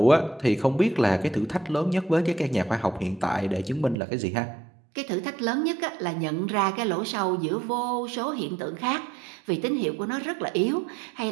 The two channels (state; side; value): drops out; left; at 4.0 s